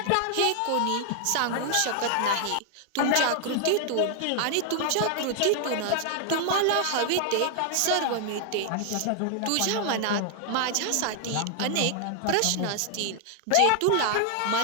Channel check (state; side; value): different; both; correlation 0.00